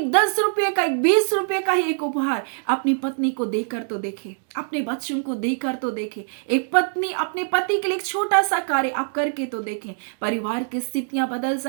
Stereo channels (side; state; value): left; silent; digital silence